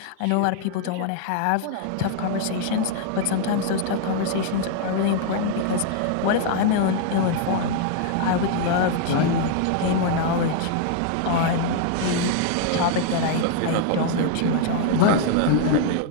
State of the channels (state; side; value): different; both; correlation 0.00